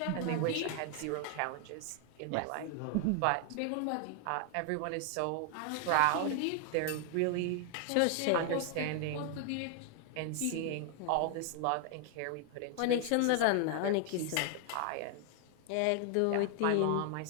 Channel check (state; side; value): different; both; correlation 0.00